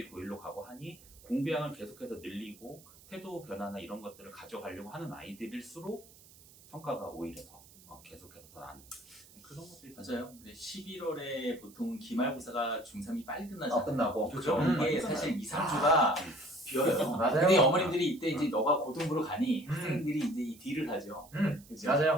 고일로 가고 하니 공부량을 계속해서 늘리고 태도 변화나 이런 것들을 가져가려고 하는 아이들일수록 성과가 오히려 더 계속해서 더 나는 그런 것들이 맞아요. 11월에 보통 기말고사가 중3이 빨리 끝나잖아요. 끝나고. 그렇죠. 이게 사실 2, 3주가 비어요. 맞아요. 근데 어머님들이 이때 이제 너가 고등부로 가니 학생들이 이제 이 딜을 하죠. 그죠?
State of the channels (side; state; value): right; noise; hiss, 23 dB below the sound